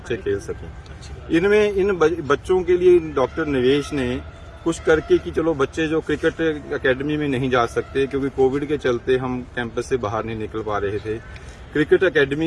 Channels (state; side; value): identical; both; correlation 1.00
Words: खेल सकें। इनमें इन बच्चों के लिए डॉक्टर निवेश ने कुछ करके कि चलो बच्चे जो क्रिकेट एकेडमी में नहीं जा सकते क्योंकि कोविड के चलते हम कैंपस से बाहर नहीं निकल पा रहे थे, क्रिकेट